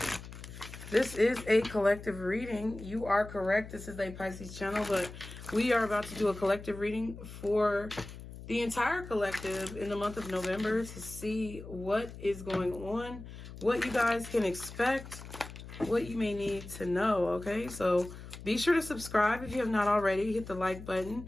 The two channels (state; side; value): noise; left; hum, 13 dB below the sound